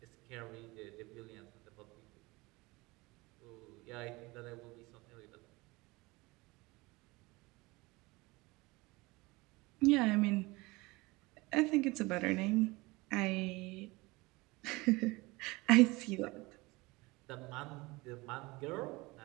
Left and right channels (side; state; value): left; quieter; 23.0 dB